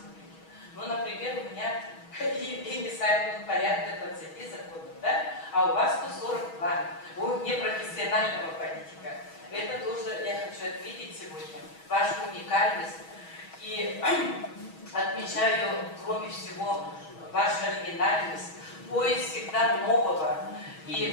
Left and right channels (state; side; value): late; right; 6.2 ms